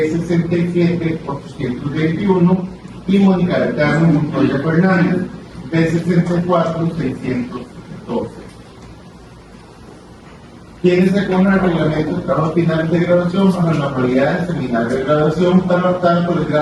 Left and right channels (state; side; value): identical; both; correlation 1.00